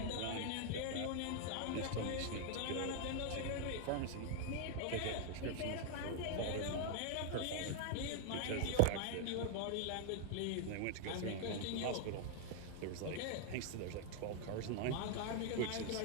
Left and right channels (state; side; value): different; both; correlation 0.00